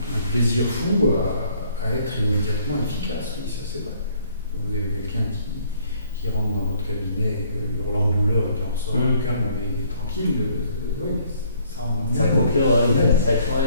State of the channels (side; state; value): both; inverted; correlation -0.63